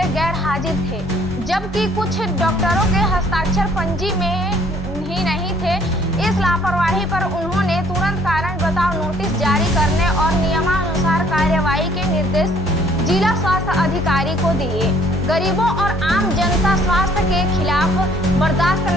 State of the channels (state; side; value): normal; both; correlation 0.60